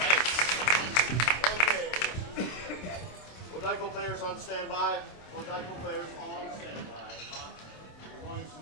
Okay. Taiko players on standby. Taiko players on standby. We're going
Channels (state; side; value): late; right; 27 ms